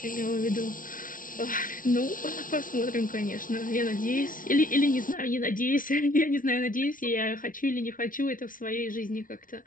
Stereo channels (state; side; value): late; right; 0.39 ms